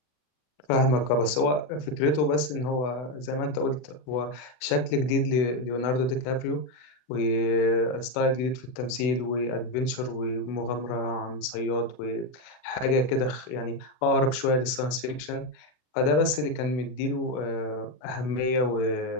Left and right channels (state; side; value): late; right; 40 ms